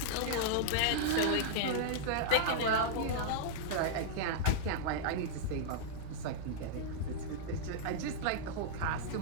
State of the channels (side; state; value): both; different; correlation -0.02